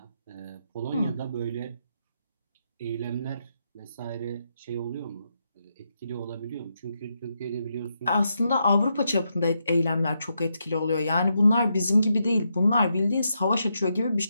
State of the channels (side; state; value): both; inverted; correlation -0.82